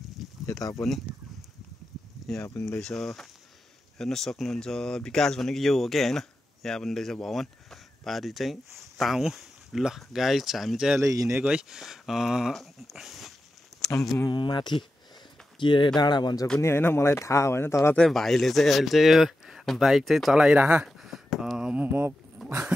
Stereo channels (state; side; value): normal; both; correlation 0.91